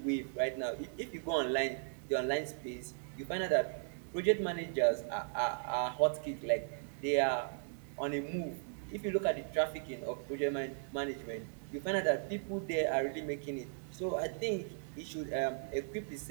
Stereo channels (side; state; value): left; silent; digital silence